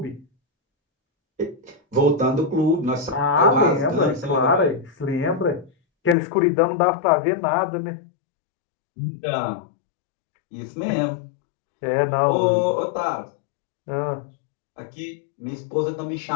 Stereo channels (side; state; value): right; drops out; at 6.2 s